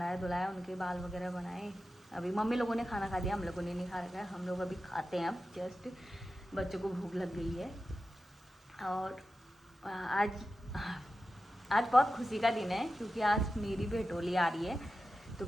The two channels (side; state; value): both; normal; correlation 0.93